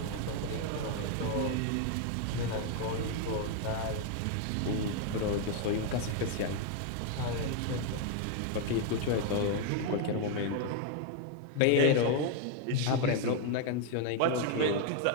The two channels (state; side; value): different; both; correlation 0.00